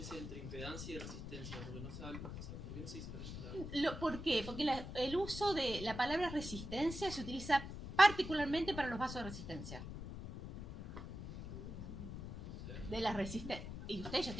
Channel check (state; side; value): noise; left; rumble, 8 dB below the sound